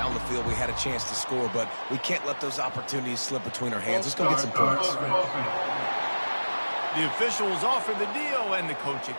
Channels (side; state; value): both; inverted; correlation -1.00